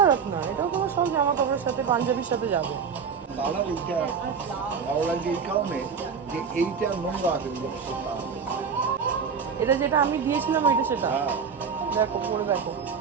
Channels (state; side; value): quieter; left; 6.2 dB